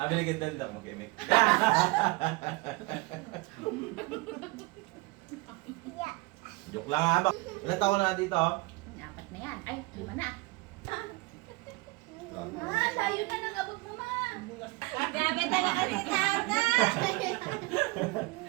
Binigyan din ako mag-imik. Joke lang ha. Ilan taon na dito? Apat na yan. Ay, 5 na. Ma, layo na ng abot mo, ma. Grabe talaga ni Tata.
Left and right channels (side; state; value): left; quieter; 23.6 dB